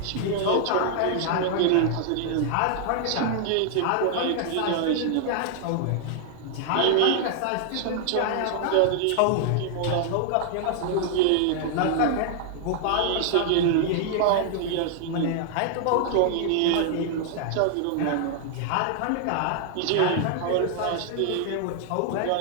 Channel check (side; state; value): both; different; correlation 0.00